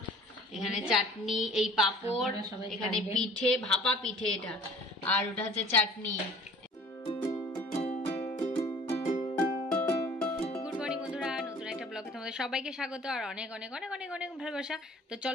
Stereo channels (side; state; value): both; normal; correlation 0.50